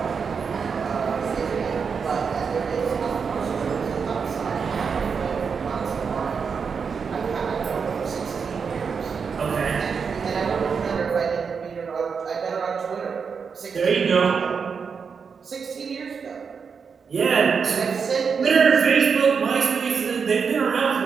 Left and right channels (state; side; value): quieter; left; 5.9 dB